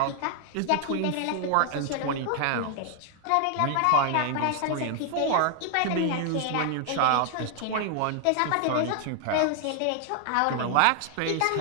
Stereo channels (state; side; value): different; both; correlation 0.00